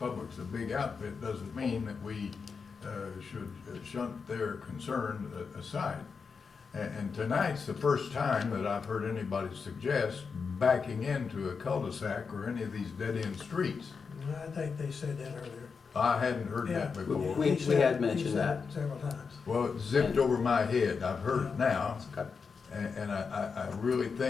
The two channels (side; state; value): right; quieter; 5.4 dB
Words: a big outfit doesn't mean that we, should shunt their concern aside. And tonight's the first time that I've heard anybody suggest backing into a cul-de-sac or any of these dead-end streets. I think they said that earlier. I hadn't heard that Yeah. before. We He said- had he mentioned said that. it several times. Well, it zipped over my head. I've heard it now. Okay. And I really